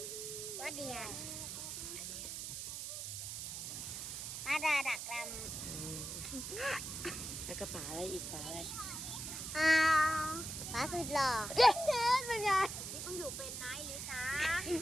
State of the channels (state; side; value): noise; right; hiss, 6 dB below the sound